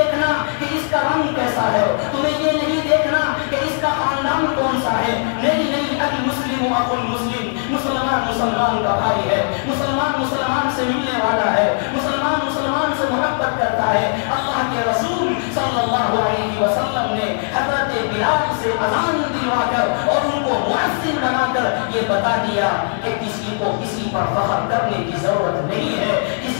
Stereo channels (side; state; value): right; silent; 66 dB below the other